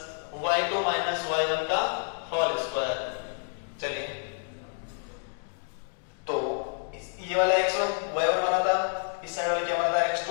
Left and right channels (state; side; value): silent; right; digital silence